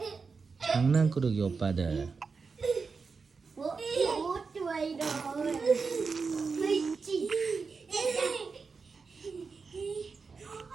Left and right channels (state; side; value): quieter; left; 4.9 dB